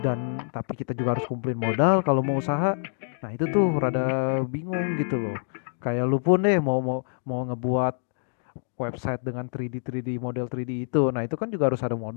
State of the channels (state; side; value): silent; right; digital silence